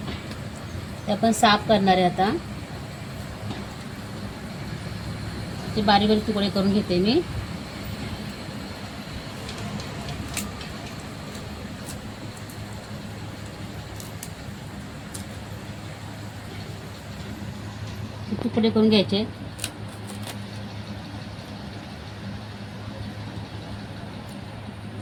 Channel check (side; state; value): both; identical; correlation 1.00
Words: ते आपण साफ करणार आहे। आता ते बारीक बारीक तुकडे करून घेते मी। तुकडे करून घ्यायचे।